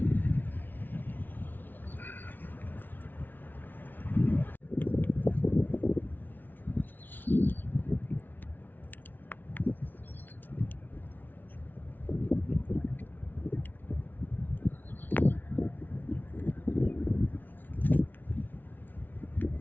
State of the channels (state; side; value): late; right; 0.088 ms